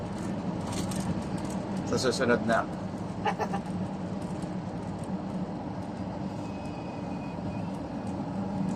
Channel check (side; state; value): both; identical; correlation 1.00